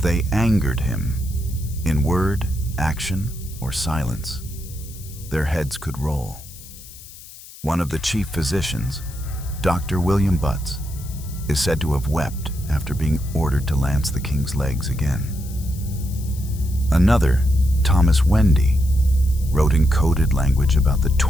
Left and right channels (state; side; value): noise; left; hiss, 18 dB below the sound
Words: they angered him, in word, action, or silence, their heads could roll. One of the chief physicians, Dr. William Butts, is said to have wept after being ordered to lance the king's legs again. Another, Thomas Wendy, wrote in coded language about the